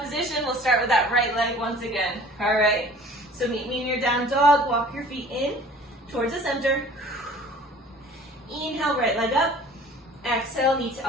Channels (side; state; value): both; normal; correlation 0.48